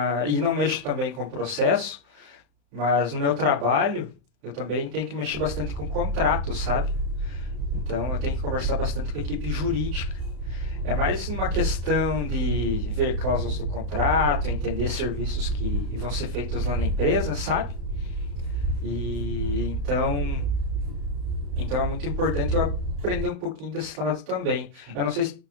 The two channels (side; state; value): left; late; 35 ms